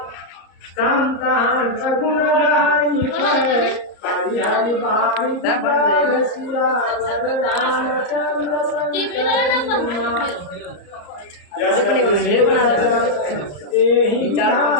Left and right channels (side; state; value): right; late; 34 ms